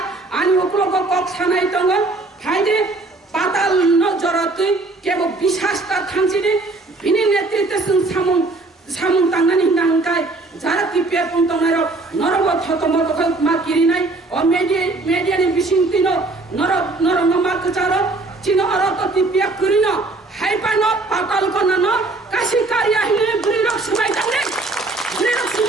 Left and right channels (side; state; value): left; quieter; 3.2 dB